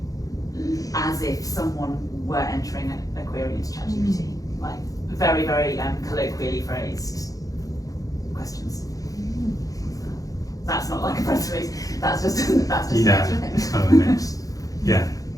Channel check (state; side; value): late; right; 0.17 ms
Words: as if someone were entering a query into ChatGPT, like very, very colloquially phrased questions. That's not like a press release. That's just Yeah, it's kind of a mix. Yeah.